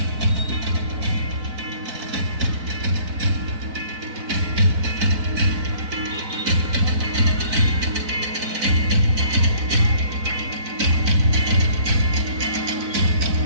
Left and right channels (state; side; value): late; left; 4.0 ms